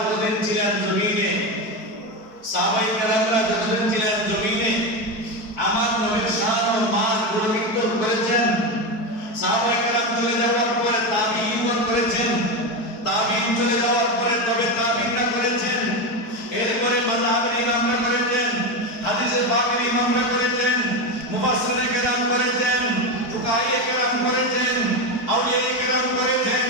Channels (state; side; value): late; right; 4.6 ms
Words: ছিলেন জমিনে, সাহাবায়ে কেরামরা যতদিন ছিলেন জমিনে, আমার নবীর শান ও মান গুণকীর্তন করেছেন। সাহাবায়ে কেরাম চলে যাওয়ার পরে তাবিঈন করেছেন, তাবিঈন চলে যাওয়ার পরে তবে তাবিঈনরা করেছেন, এরপরে মাযহাবের ইমামরা করেছেন, হাদিসে পাকের ইমামরা করেছেন, মুফাসসিরে কেরাম করেছেন, ফুকাহায়ে কেরাম করেছেন, আউলিয়ায়ে কেরাম করেছেন।